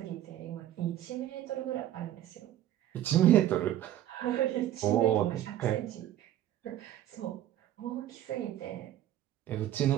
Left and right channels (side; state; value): left; quieter; 12.7 dB